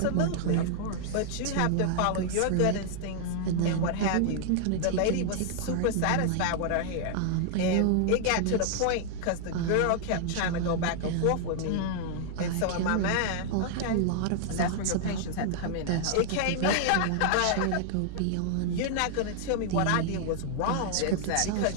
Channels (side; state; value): both; different; correlation -0.01